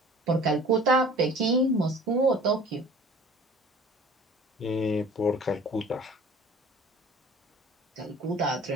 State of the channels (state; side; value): normal; both; correlation 0.46